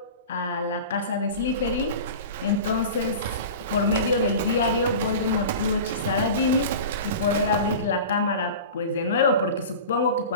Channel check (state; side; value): inverted; both; correlation -0.34